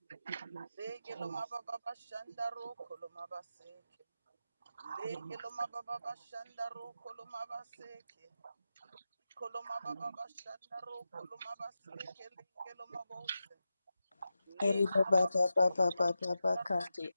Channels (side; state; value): both; inverted; correlation -0.91